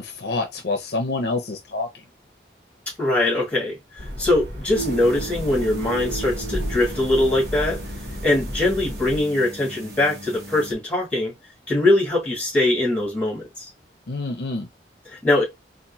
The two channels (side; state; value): both; normal; correlation 0.69